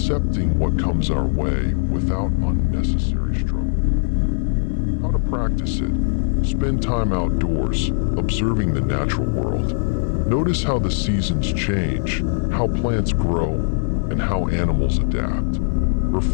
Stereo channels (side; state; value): right; silent; digital silence